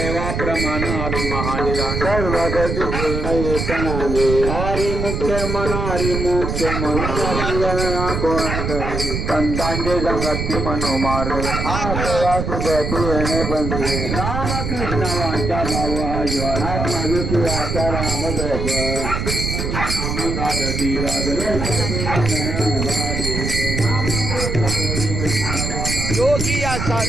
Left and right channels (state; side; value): noise; right; rumble, 2 dB below the sound